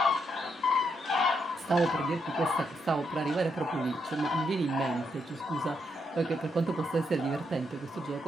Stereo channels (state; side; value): normal; both; correlation 0.79